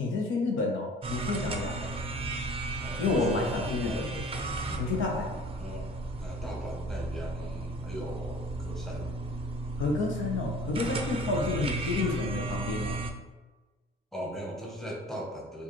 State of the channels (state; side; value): normal; both; correlation 0.47